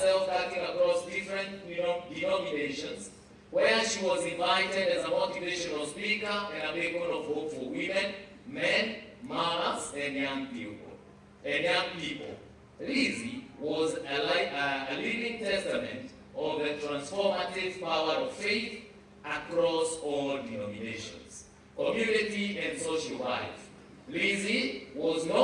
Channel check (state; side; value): identical; both; correlation 1.00